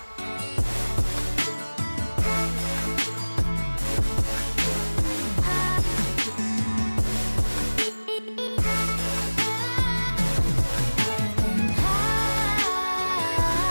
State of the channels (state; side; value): inverted; both; correlation -1.00